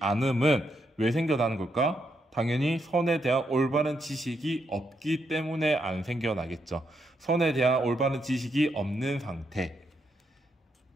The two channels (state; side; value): normal; both; correlation 0.79